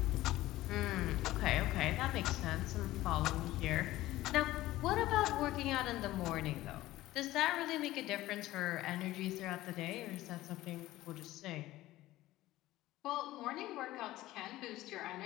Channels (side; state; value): right; quieter; 16.4 dB